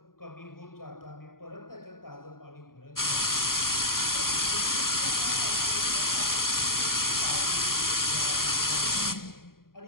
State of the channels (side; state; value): right; late; 0.92 ms